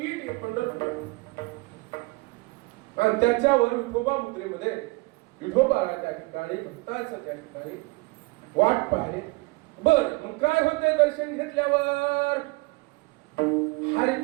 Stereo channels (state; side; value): quieter; left; 25.6 dB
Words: हे पंढरपूर. आणि त्याच्यावर विठोबा मुद्रेमध्ये विठोबाला त्या ठिकाणी भक्ताचं त्या ठिकाणी वाट पाहिले. बर मग काय होतंय दर्शन घेतल्यावर? हरी